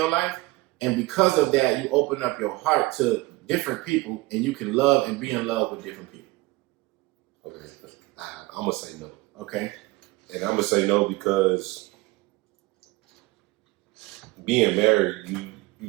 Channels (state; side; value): quieter; left; 21.3 dB